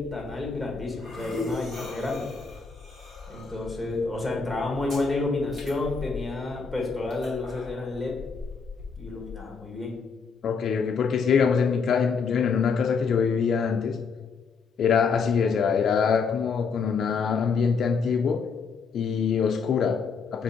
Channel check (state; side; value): quieter; right; 5.3 dB